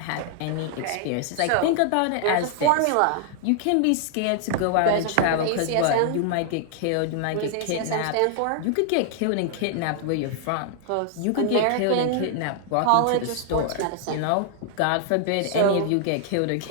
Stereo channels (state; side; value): different; both; correlation 0.00